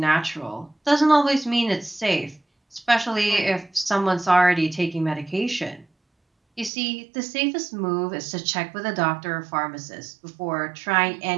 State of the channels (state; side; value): drops out; left; at 6.7 s